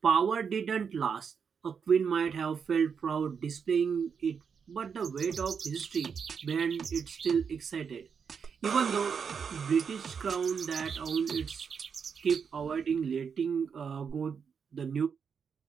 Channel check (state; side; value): quieter; left; 6.4 dB